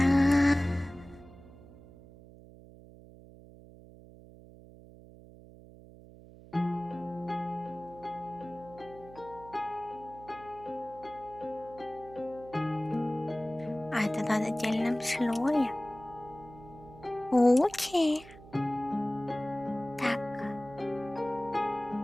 А, это надо отдельном слое. Окей. Так.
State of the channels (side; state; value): right; noise; hum, 19 dB below the sound